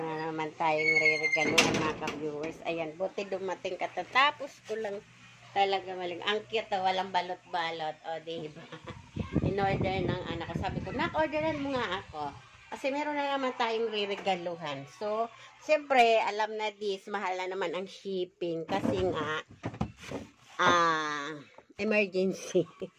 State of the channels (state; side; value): identical; both; correlation 1.00